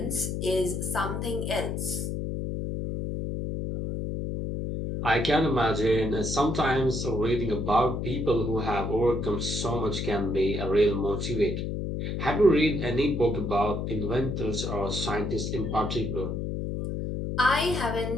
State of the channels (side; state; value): left; noise; hum, 3 dB below the sound